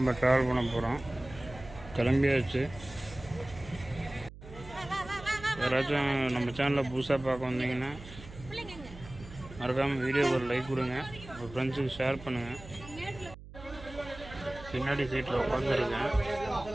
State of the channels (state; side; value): noise; right; hum, 16 dB below the sound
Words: ட்ராவல் பண்ண போகிறோம். கிளம்பியாச்சு. யாராச்சும் நம்ம சேனலில் புதுசாக பார்க்க வந்தீங்கன்னா மறக்காமல் வீடியோக்கு ஒரு லைக் கொடுங்க, உங்கள் ஃப்ரெண்ட்ஸுக்கு ஷேர் பண்ணுங்கள். பின்னாடி சீட்டில் உட்காந்துருக்கேன்.